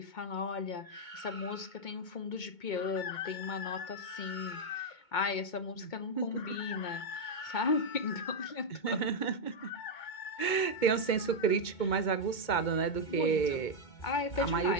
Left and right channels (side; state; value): right; late; 2.2 ms